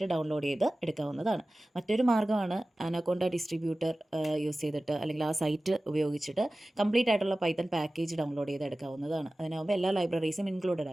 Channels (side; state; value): both; normal; correlation 0.97